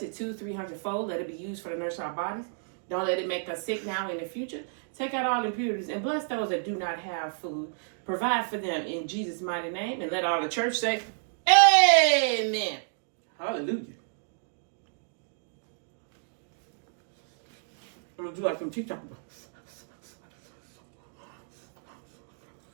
it 200-300-fold. Let it be used for the nurse of our bodies. Don't let it make us sick now in the future. Take out all impurities and bless those that do not have food. Provide for them in Jesus' mighty name. And let all the church say, amen. Hallelujah. I'm going to do like some TikTok.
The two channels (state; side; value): silent; left; digital silence